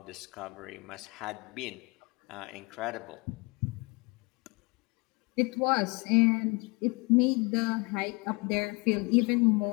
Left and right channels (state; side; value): quieter; right; 28.3 dB